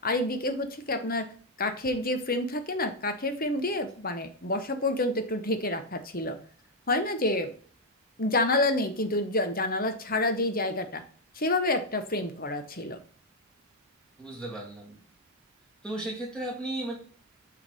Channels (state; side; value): normal; both; correlation 0.00